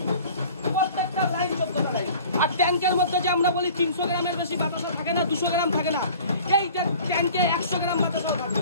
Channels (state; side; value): inverted; both; correlation -0.46